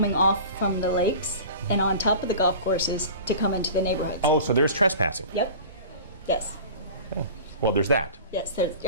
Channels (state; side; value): inverted; both; correlation -0.38